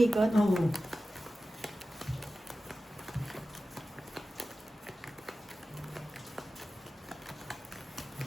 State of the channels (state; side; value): normal; both; correlation 0.94